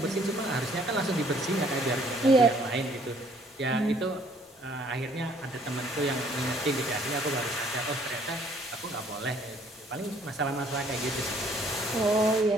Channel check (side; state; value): both; normal; correlation 0.61